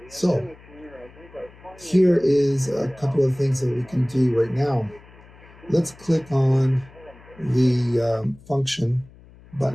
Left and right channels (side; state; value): left; noise; hum, 23 dB below the sound